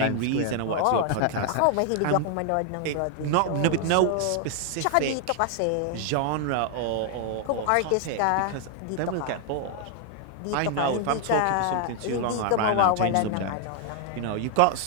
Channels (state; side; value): different; both; correlation 0.00